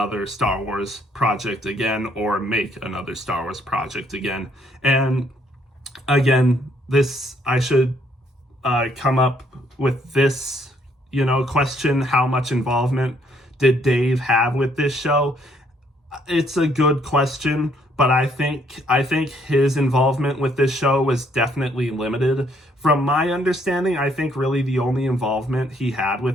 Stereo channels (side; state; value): both; normal; correlation 0.67